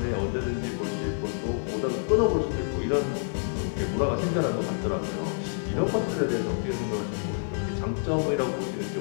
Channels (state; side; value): silent; right; digital silence